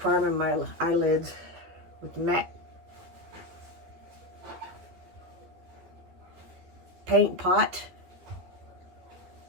my eyelids with matte paint pot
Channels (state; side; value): late; left; 12 ms